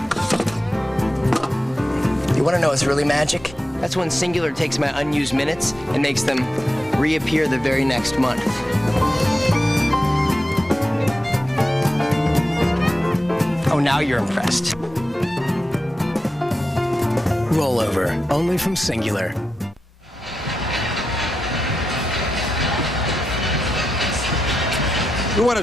You want to know what's really magic? That's when Singular takes my unused minutes and makes them reappear the very next month. now you're impressed. Rollover, only from Singular. We want to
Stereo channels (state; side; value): normal; both; correlation 0.89